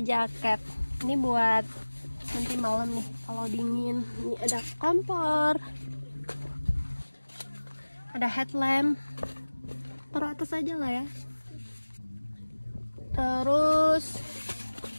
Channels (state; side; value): inverted; both; correlation -1.00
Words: jaket. Ini buat nanti malam nih kalau dingin. Ini ada kompor, ada headlamp. Taruh atas aja lah ya. Terus,